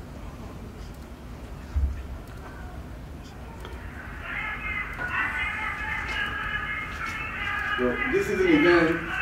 So this is an event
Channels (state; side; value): identical; both; correlation 1.00